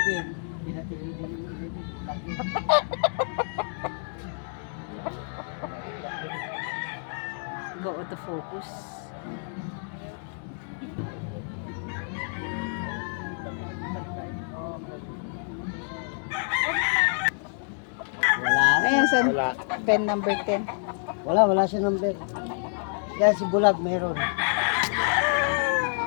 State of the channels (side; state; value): right; silent; 59 dB below the other